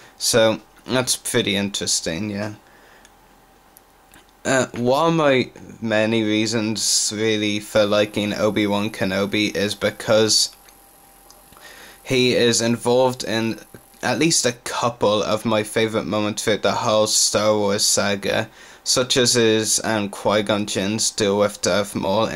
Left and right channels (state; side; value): identical; both; correlation 1.00